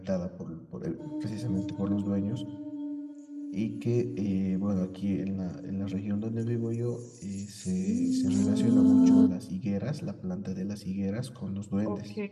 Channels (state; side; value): identical; both; correlation 1.00